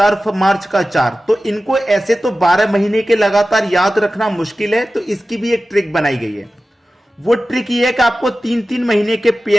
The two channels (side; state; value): both; normal; correlation 0.95